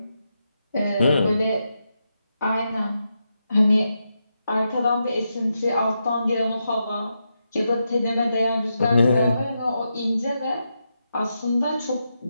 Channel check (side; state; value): both; inverted; correlation -0.85